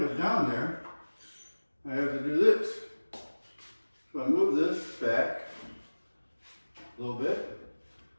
it down there, I have to do this. So I move this back a little bit.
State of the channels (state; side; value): inverted; both; correlation -1.00